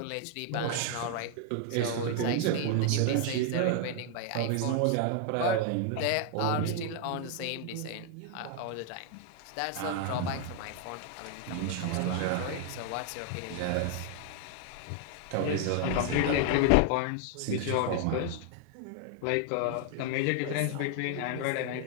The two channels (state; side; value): different; both; correlation 0.00